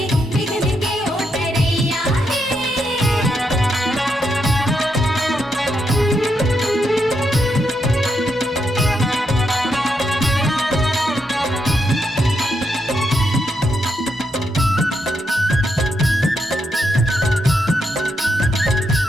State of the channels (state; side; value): normal; both; correlation 0.80